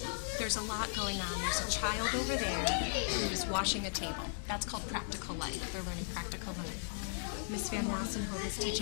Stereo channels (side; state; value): right; silent; digital silence